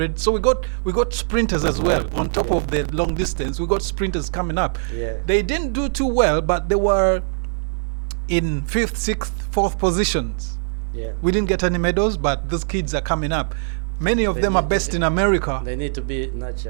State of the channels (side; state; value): left; silent; 60 dB below the other